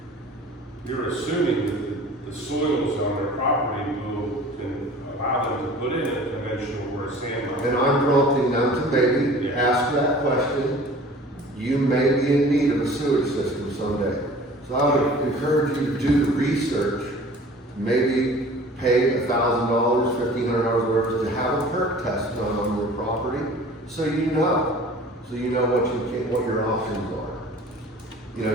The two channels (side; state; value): both; normal; correlation 0.45